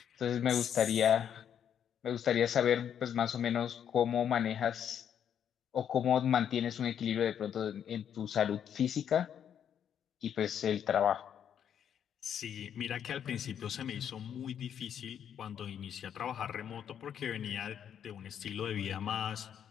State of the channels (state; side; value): quieter; right; 8.9 dB